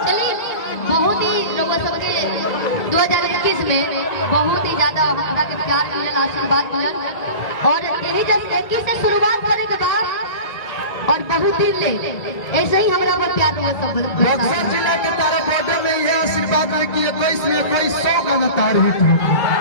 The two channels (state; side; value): late; right; 1.9 ms